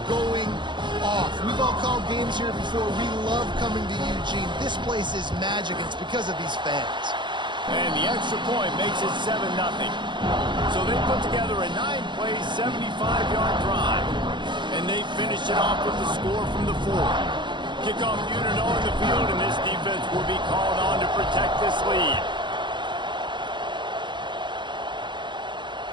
going off. We've all called games here before. We love coming to Eugene. This place is magic, and it's because of these fans. And the extra point makes it 7-0. So they put together a 9-play, 75-yard drive. And they finish it off with the score from the 4. Kickoff unit on the field, and this defense will be called on to protect this lead.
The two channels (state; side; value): late; left; 0.23 ms